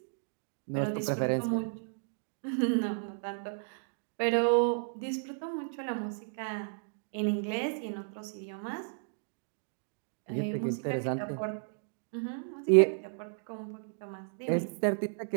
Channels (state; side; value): silent; left; digital silence